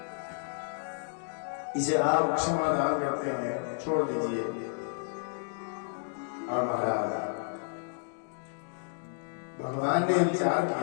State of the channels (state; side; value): silent; right; digital silence